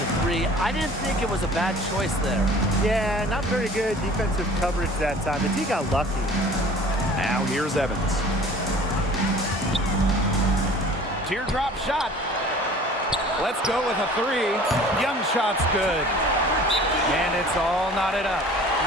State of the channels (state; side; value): normal; both; correlation 0.47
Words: 3. I didn't think it was a bad choice there. Yeah, not very good defensive coverage that time. The team got lucky. Now here's Evans. Teardrop shot. Let's go with a 3. Young shot's good. And it's all knotted up.